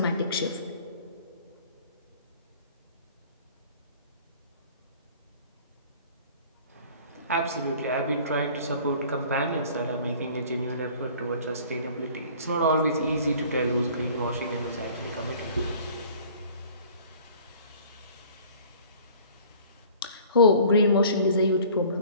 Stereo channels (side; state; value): both; inverted; correlation -0.49